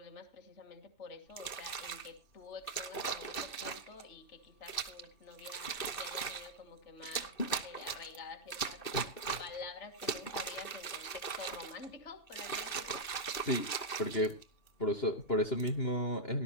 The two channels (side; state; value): right; late; 2.6 ms